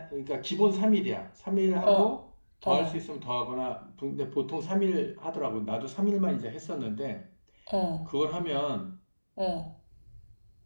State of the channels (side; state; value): both; inverted; correlation -1.00